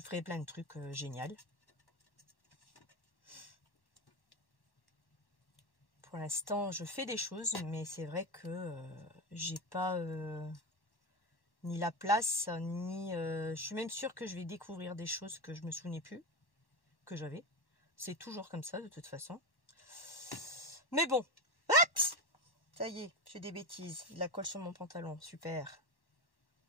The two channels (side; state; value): right; late; 1.1 ms